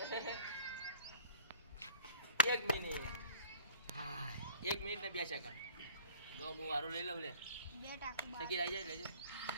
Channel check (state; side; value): inverted; both; correlation -0.48